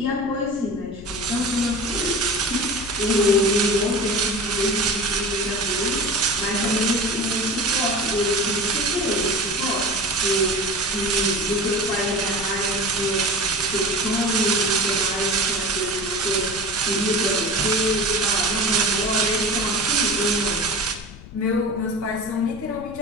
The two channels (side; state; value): left; noise; rumble, 16 dB below the sound